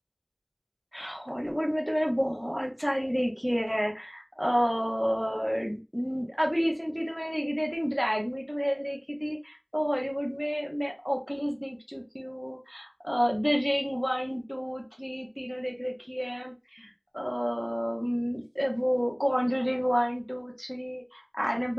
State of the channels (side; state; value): both; identical; correlation 1.00